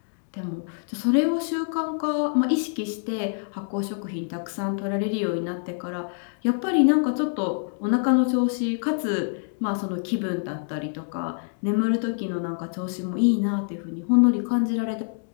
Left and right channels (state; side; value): silent; right; digital silence